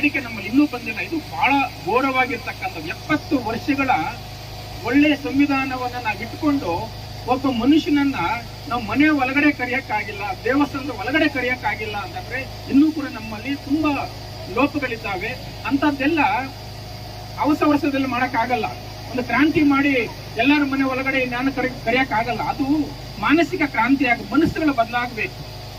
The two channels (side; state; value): both; identical; correlation 1.00